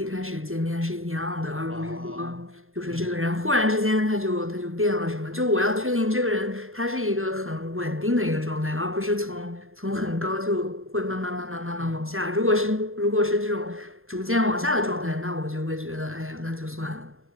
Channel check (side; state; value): left; late; 0.61 ms